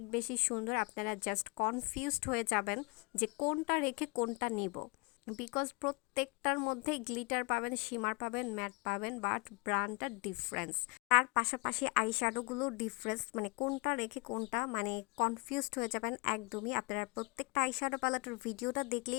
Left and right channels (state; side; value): quieter; right; 29.1 dB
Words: বেশি সুন্দর, আপনারা জাস্ট কনফিউজড হয়ে যাবেন যে কোনটা রেখে কোনটা নিব, বিকজ প্রত্যেকটার মধ্যে গ্লিটার পাবেন, শিমার পাবেন, ম্যাট পাবেন, বাট ব্র্যান্ডটা ডিফারেন্স। তার পাশাপাশি আইশ্যাডোগুলো ডিফারেন্স, মানে কোনটা রেখে কোনটা, মানে কনফিউজড হয়ে যাবেন একদমই। আপনারা প্রত্যেকটা আইশ্যাডো প্যালেটের ভিডিওটা